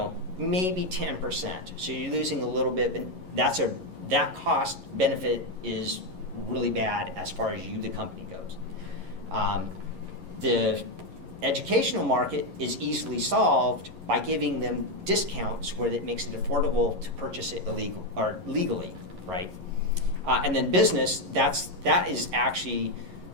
maybe 10%. So you're losing a little bit, but that cost benefit is really bad as far as you, the company, goes. The educational market is easily solved by giving them discounts where it makes it affordable to purchase it legally, right? And then business, that is actually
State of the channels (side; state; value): left; late; 11 ms